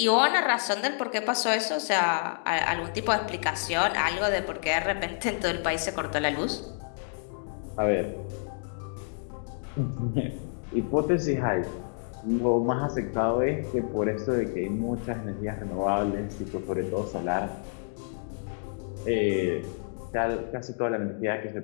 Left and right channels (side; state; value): right; silent; digital silence